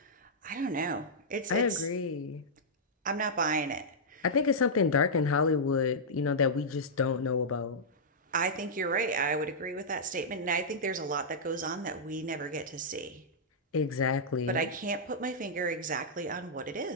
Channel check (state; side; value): normal; both; correlation -0.10